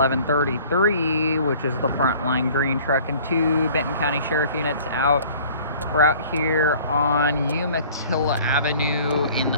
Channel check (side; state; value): both; inverted; correlation -0.50